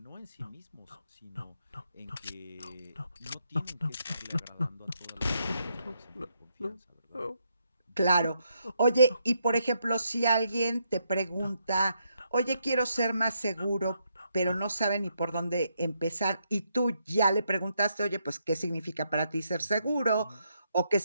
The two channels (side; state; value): both; inverted; correlation -0.78